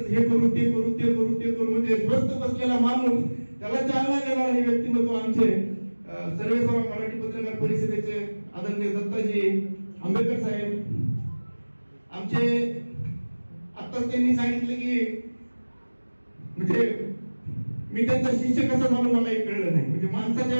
हे करू ते करू, म्हणजे स्वस्थ बसलेला माणूस त्याला चालना देणार हे व्यक्तिमत्व आमचे सर्वेसर्वा मराठी पत्रकार परिषदेचे आदरणीय दत्ताजी आंबेडकर साहेब आमचे. आत्ताच त्यांनी सांगितलं की म्हणजे मी त्यांचा शिष्य कसा झालो मलाही कळलं नाही, म्हणजे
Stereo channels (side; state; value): both; inverted; correlation -1.00